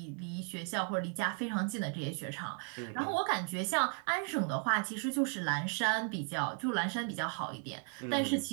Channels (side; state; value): left; quieter; 37.3 dB